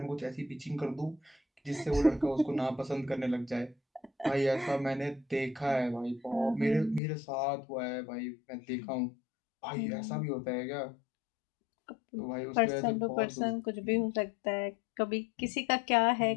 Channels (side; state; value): right; drops out; at 7.0 s